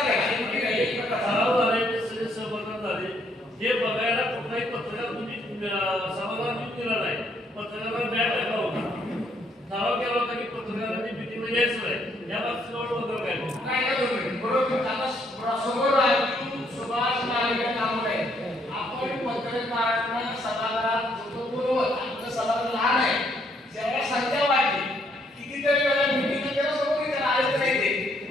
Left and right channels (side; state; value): both; normal; correlation 0.70